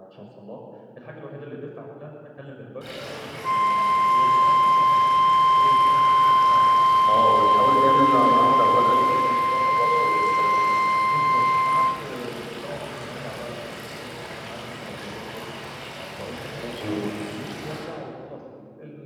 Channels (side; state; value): both; identical; correlation 1.00